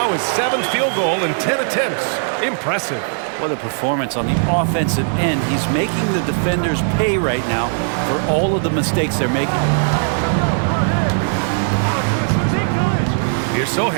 his 7th field goal in 10 attempts. Impressive. What a performance on the offensive end. He's making the defenders pay right now for all of the mistakes they're making. Here's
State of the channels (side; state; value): left; silent; 67 dB below the other